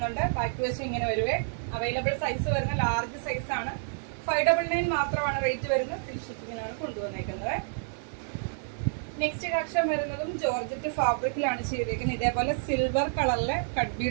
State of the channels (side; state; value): left; silent; digital silence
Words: ബാക്ക് വശം ഇങ്ങനെ വരുവേ. അവൈലബിൾ സൈസ് വരുന്ന ലാർജ് സൈസ് ആണ്. 599 മാത്രമാണ് റേറ്റ് വരുന്നത്. ഫ്രീ ഷിപ്പിംഗിലാണ് കൊണ്ടുവന്നേക്കുന്നത്. നെക്സ്റ്റ് കളക്ഷൻ വരുന്നതും ജോർജറ്റ് ഫാബ്രിക്കിലാണ് ചെയ്തേക്കുന്നത്. ഇതേപോലെ സിൽവർ കളറിലെ കട്ട്